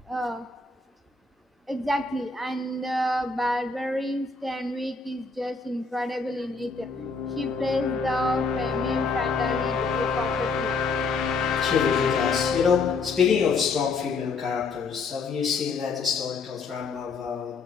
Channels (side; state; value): right; quieter; 4.3 dB